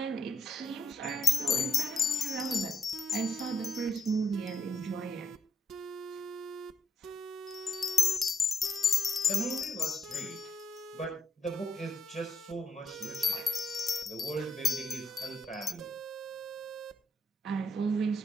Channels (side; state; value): both; normal; correlation 0.77